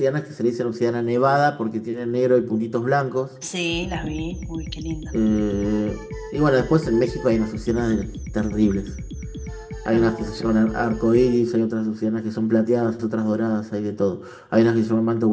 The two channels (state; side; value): identical; both; correlation 1.00